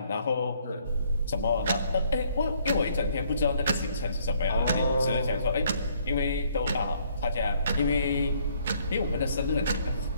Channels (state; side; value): inverted; both; correlation -0.65